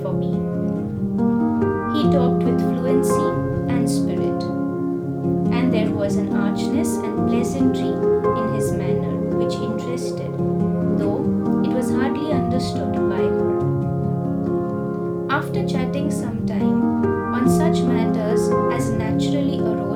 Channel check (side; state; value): both; identical; correlation 1.00